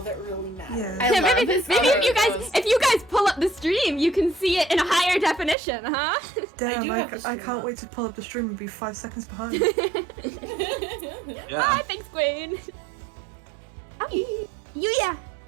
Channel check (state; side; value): drops out; left; at 5.6 s